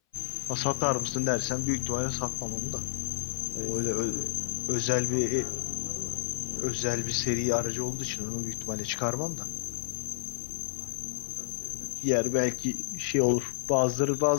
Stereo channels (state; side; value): silent; right; 58 dB below the other